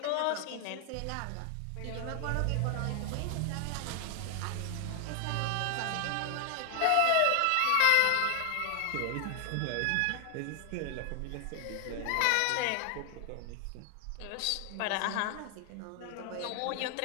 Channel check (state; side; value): different; both; correlation 0.00